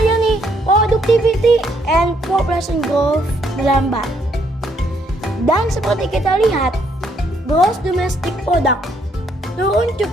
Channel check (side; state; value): both; normal; correlation 0.71